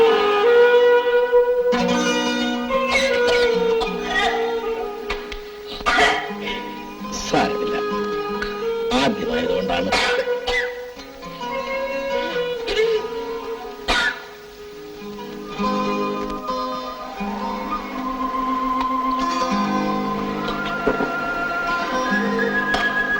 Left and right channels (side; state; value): both; identical; correlation 1.00